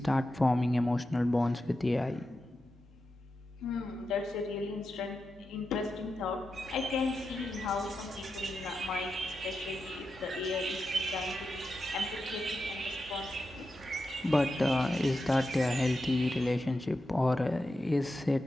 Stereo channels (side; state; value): both; normal; correlation 0.89